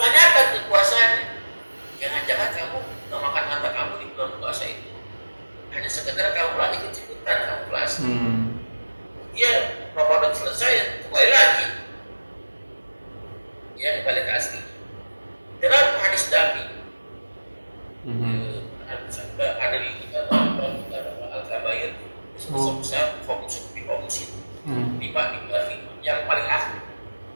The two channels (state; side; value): inverted; both; correlation -1.00